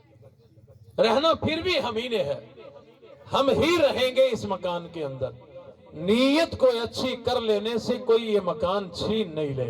رہنا پھر بھی ہم ہی نے ہے، ہم ہی رہیں گے اس مکان کے اندر، نیت کو اچھی کر لینے سے کوئی یہ مکان چھین نہیں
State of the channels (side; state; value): both; identical; correlation 1.00